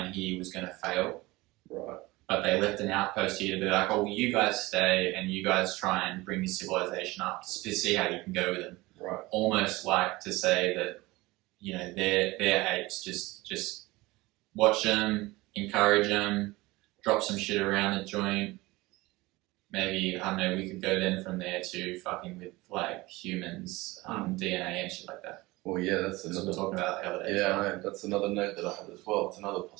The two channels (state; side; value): quieter; left; 21.1 dB